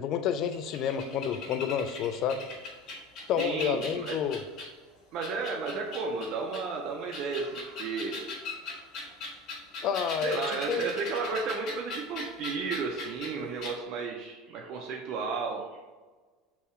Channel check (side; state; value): both; normal; correlation 0.34